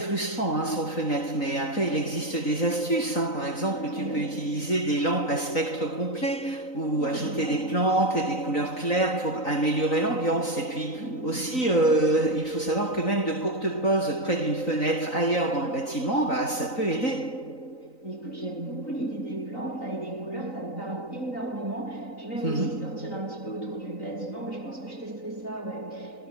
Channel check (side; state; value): right; late; 3.9 ms